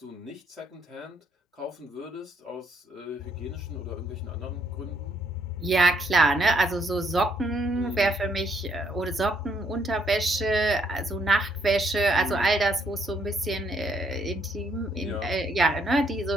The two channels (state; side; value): normal; both; correlation 0.71